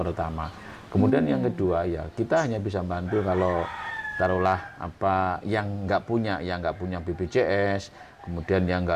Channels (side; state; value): both; identical; correlation 1.00